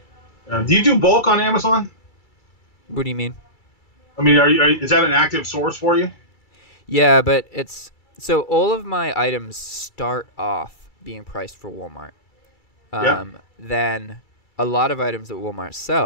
Do you do bulk on Amazon? What do you mean? I mean, is that an active source for you? Yeah, but so all of my items start off being priced for Walmart. Then a lot of items that Walmart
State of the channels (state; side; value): late; right; 2.3 ms